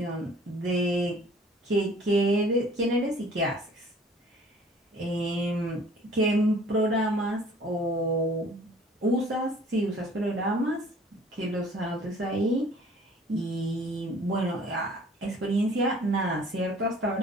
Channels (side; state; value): both; normal; correlation 0.52